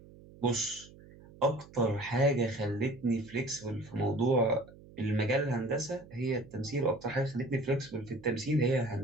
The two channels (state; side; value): noise; right; hum, 21 dB below the sound